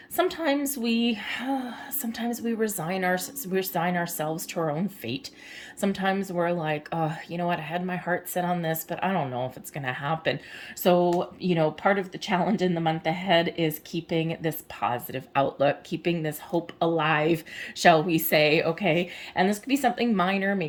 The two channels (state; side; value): identical; both; correlation 1.00